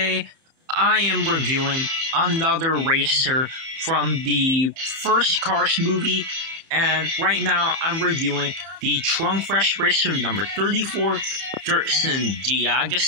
I am reviewing another racer from the first Cars movie, and right now I'm reviewing the Trunk Fresh Racer number 34, Dirkson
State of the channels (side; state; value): left; late; 30 ms